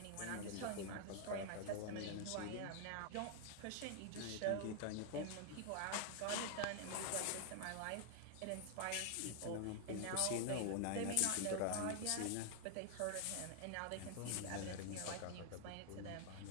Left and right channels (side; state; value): both; different; correlation 0.00